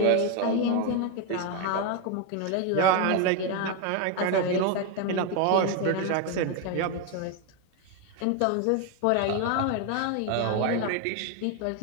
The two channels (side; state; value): both; different; correlation 0.01